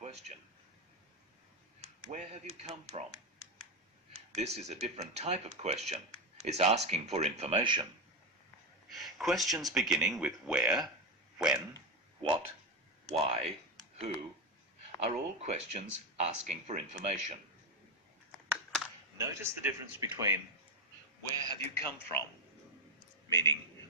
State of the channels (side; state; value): both; normal; correlation 0.11